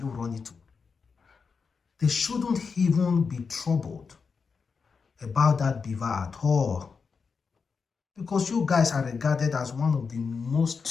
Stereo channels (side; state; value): right; quieter; 5.3 dB